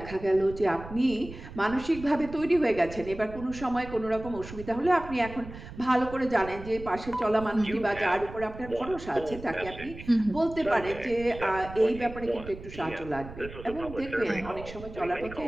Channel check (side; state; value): right; noise; rumble, 14 dB below the sound